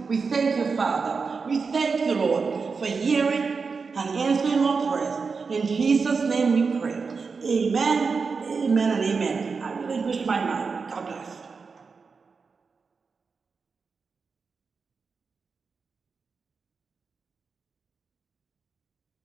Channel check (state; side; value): quieter; left; 4.9 dB